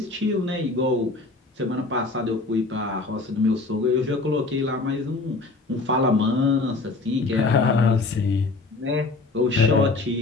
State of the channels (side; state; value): right; quieter; 3.5 dB